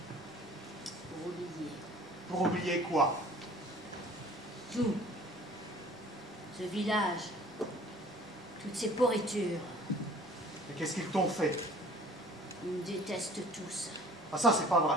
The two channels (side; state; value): both; normal; correlation 0.50